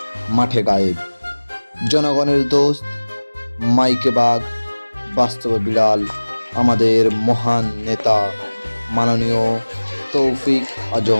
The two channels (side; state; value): both; inverted; correlation -1.00